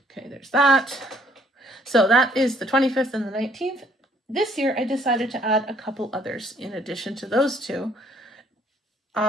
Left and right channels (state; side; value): normal; both; correlation 0.64